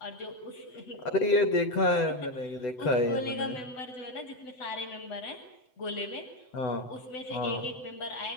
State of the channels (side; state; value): right; late; 8.0 ms